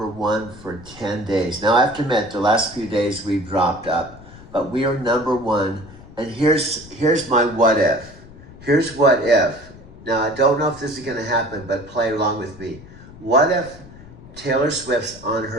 for 10 days. Now, I have to admit, the last few days we've dropped up, but we are #1. And here's my what if. Here's what if. Now, I don't know if this is going to happen, but play along with me. What if Taylor Swift's on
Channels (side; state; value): left; noise; rumble, 19 dB below the sound